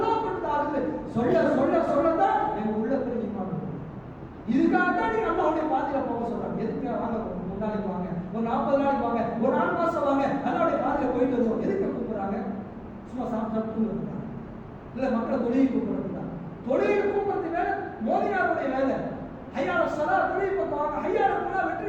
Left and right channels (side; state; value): both; identical; correlation 1.00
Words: கொண்டு தாகுது சொல்ல சொல்ல சொல்லதான் எங்க உள்ளத்துல ஈமான் வரும். இதுக்காக தான் நீங்க அல்லாஹ்வுடைய பாதையில போக சொல்றாங்க. எதுக்கு வாங்க, ஒரு நாளைக்கு வாங்க, ஒரு 40 நாளைக்கு வாங்க, ஒரு 4 மாசம் வாங்க, அல்லாஹ்வுடைய பாதையில போயிட்டு வருவோம். எதுக்கு கூப்பிடுறாங்க? சும்மா சாப்பிட்டு கூப்பிடுறாங்க, இல்ல மக்களை தொழிலை கூப்பிடுறாங்க. தொழிலை கூப்பிடுறது வேலை மோதினாருடைய வேலை. ஐயால சலா தொழில் பக்குவாங்க, ஐயால போனா